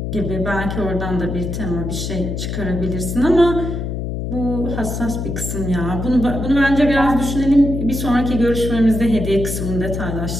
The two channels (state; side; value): noise; left; hum, 4 dB below the sound